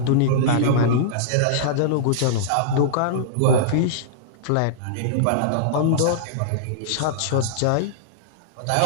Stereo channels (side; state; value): both; different; correlation -0.02